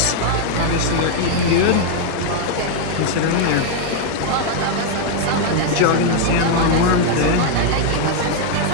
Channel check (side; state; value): both; different; correlation 0.00